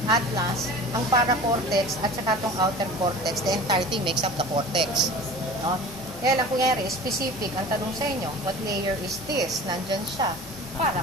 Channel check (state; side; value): normal; both; correlation 0.39